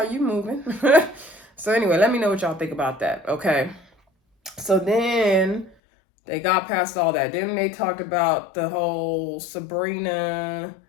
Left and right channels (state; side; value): drops out; right; at 5.8 s